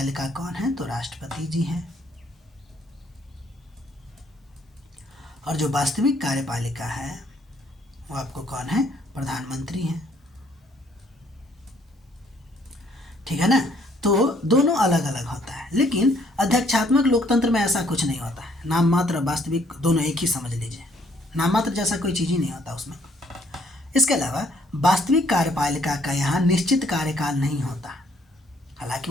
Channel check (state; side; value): normal; both; correlation 0.65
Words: कौन है, तो राष्ट्रपति जी हैं, और जो वास्तविक कार्यपालिका है वो आपको कौन है, प्रधानमंत्री हैं, ठीक है ना। तो दोनों अलग अलग होता है। लेकिन अध्यक्षात्मक लोकतंत्र में ऐसा कुछ नहीं होता है, नाम मात्र और वास्तविक दोनों एक ही समझ लीजिए, नाम मात्र जैसा कोई चीज़ ही नहीं होता उसमें। इसके अलावा वास्तविक कार्यपालिका का यहाँ निश्चित कार्यकाल नहीं होता, हालांकि